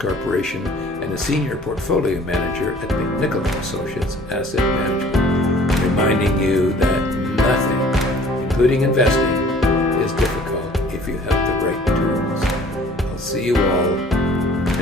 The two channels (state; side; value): normal; both; correlation 0.52